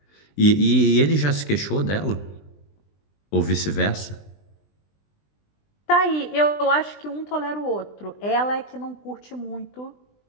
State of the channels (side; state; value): right; late; 20 ms